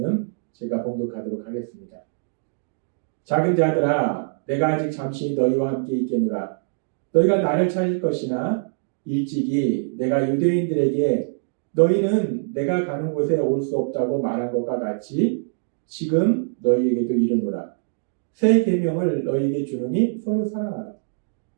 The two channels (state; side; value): silent; left; digital silence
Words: 제가 봉독하도록 하겠습니다. 작은 자들아, 내가 아직 잠시 너희와 함께 있겠노라. 너희가 나를 찾을 것이나 일찍이 내가 유대인들에게 너희는 내가 가는 곳에 올 수 없다고 말한 것과 같이 지금 너희에게도 이르노라. 새 계명을 너희에게 주노니 서로 사랑하라.